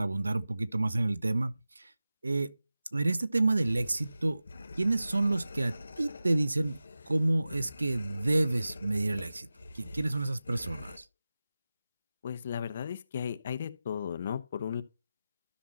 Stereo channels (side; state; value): both; inverted; correlation -0.95